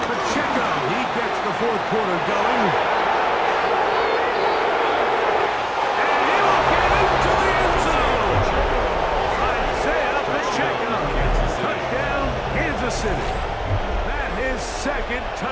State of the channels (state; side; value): identical; both; correlation 1.00